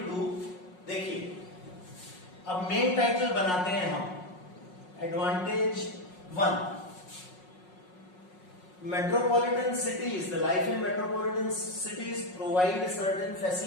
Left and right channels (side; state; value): right; late; 5.5 ms